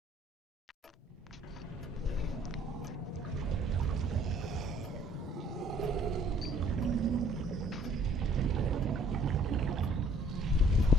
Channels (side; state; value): both; normal; correlation 0.60